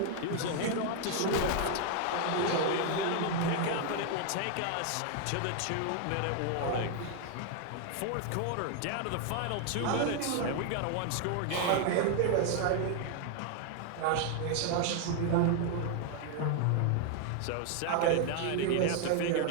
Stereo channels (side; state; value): both; different; correlation 0.00